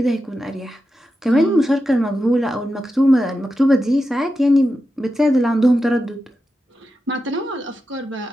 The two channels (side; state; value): both; normal; correlation 0.90